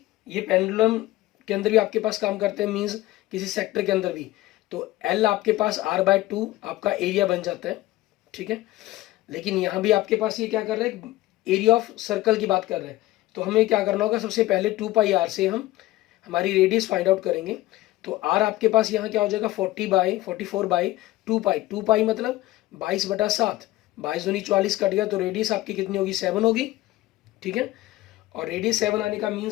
ये पेंडुलम के अंदर भी आपके पास काम करते हैं, मीन्स किसी सेक्टर के अंदर भी। तो एल आपके पास r/2 आपका एरिया बन जाता है, ठीक है। लेकिन यहाँ भी आपके पास ये क्या कर रहे हैं, एरिया ऑफ सर्कल की बात कर रहे हैं। तो हमें क्या करना होगा, सबसे पहले 2 पाई आर से हम हमारी रेडियस फाइंड आउट करेंगे। तो आर आपके पास यहाँ क्या हो जाएगा, 44/2 पाई, 2 पाई मतलब 22/7, 22×2 = 44 कट गया, तो रेडियस आपकी कितनी होगी, 7 होगी, ठीक है। और रेडियस 7 आने का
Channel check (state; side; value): quieter; right; 16.9 dB